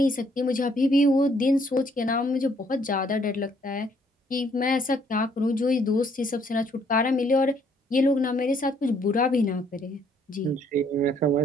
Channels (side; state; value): both; normal; correlation 0.66